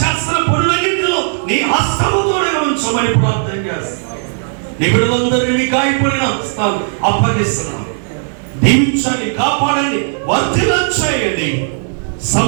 చేస్తున్న పనులన్నింటిలో నీ హస్తముతో ఉంచమని ప్రార్థన చేస్తున్నాం. నీ బిడ్డలందరినీ మీ గాయపడిన హస్తాలు అప్పగిస్తున్నాం. దీవించండి, కాపాడండి, వర్ధిల్లం చేయండి.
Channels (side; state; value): left; silent; 61 dB below the other